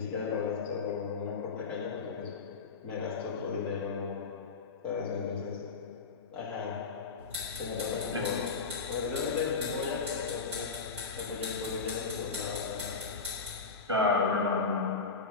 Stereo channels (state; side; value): quieter; right; 4.7 dB